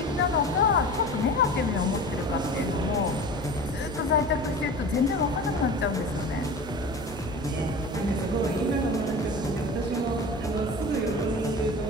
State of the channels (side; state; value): both; normal; correlation 0.35